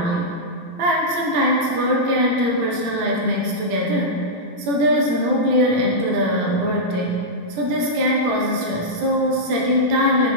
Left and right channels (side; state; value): left; late; 18 ms